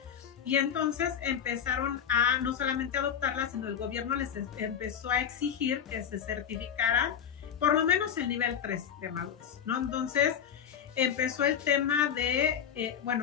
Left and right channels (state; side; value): quieter; right; 8.5 dB